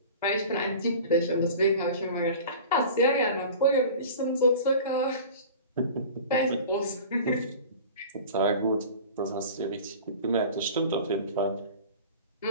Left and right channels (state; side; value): inverted; both; correlation -0.39